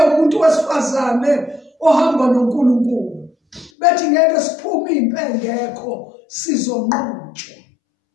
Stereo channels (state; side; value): drops out; right; at 3.7 s